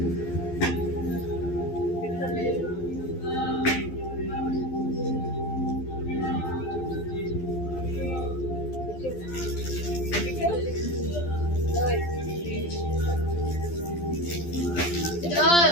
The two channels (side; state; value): right; late; 12 ms